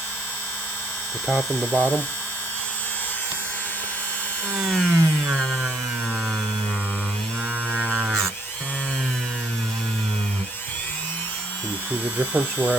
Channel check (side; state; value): both; normal; correlation 0.70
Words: The top and the bottom. Can you see the difference where